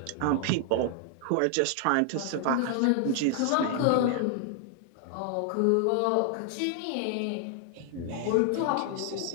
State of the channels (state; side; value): different; both; correlation 0.00